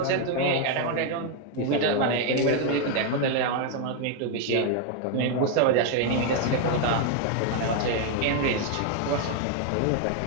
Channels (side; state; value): both; different; correlation 0.01